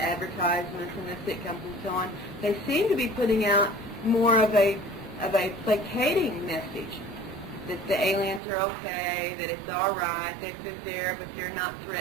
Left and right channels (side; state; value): left; drops out; at 8.4 s